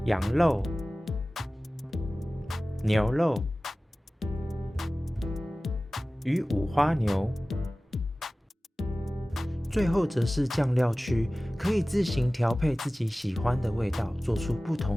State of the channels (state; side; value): normal; both; correlation 0.97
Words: 羊肉、牛肉与五花牛。最后则是酱料区，可以自行调配自己喜欢的味道，做出不